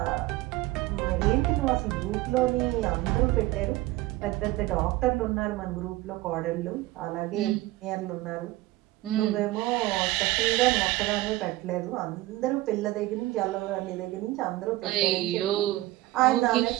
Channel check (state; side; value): quieter; left; 18.1 dB